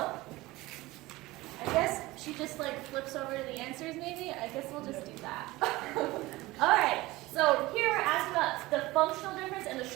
guess she just like flips over to the answers maybe. I guess we'll just do that. All right, so here we're asking about the functional difference and the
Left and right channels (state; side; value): quieter; left; 19.6 dB